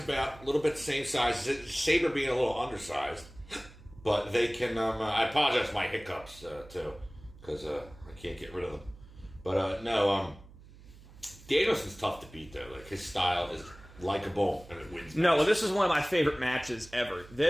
a little bit the same size. Sabre being a little undersized. But they can... I apologize for my hiccups, too, because I can't get rid of them. But, no, Danielson's tough to beat, though. Like, his style is likable, and it wins. No, well, this is one of my favorite matches ever.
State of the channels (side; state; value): right; noise; hum, 21 dB below the sound